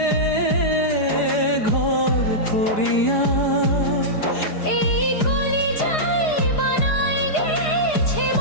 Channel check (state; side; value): late; right; 4.9 ms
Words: ঘর করিয়া, এই কলিজায় বানায় গেছে